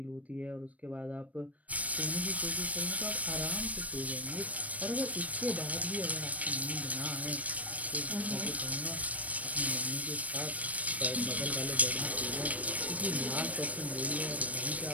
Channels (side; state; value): left; late; 0.069 ms